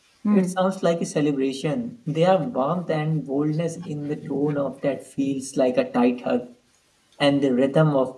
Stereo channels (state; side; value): identical; both; correlation 1.00